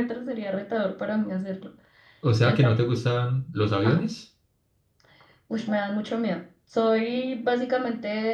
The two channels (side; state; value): both; identical; correlation 1.00